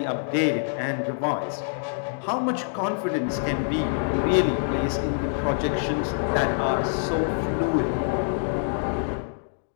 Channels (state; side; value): silent; right; digital silence